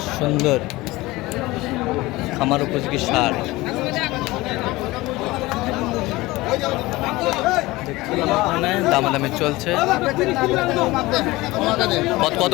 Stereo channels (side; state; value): right; quieter; 20.1 dB